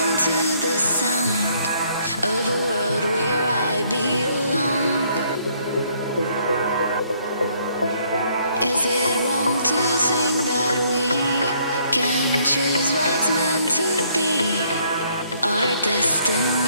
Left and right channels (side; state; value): both; inverted; correlation -0.66